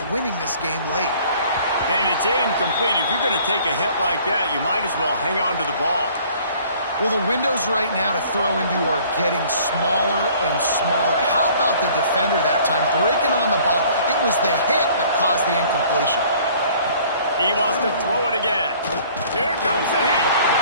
winning this game late. And it's incomplete. If you're going to take a hit like that, you might as well hang on to the ball. Well, the windows right now to throw into are getting smaller and smaller. How about the defender that time breaking on the ball? It was the hit that caused the incompletion. He wants to throw it again. Here comes the heat.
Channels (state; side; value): inverted; both; correlation -0.54